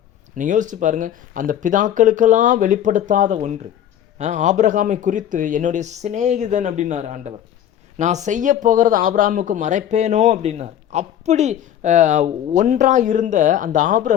நீங்கள் யோசிச்சு பாருங்கள், அந்த பிதாக்களுக்கெல்லாம் வெளிப்படுத்தாத ஒன்று. ஆபிரகாமை குறித்து என்னுடைய சிநேகிதன் அப்படின்னார் ஆண்டவர். நான் செய்ய போகிறது ஆபிரகாமுக்கு மறைப்பேனோ அப்படின்னார். அப்படி ஒன்றாக இருந்த அந்த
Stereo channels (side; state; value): right; quieter; 10.6 dB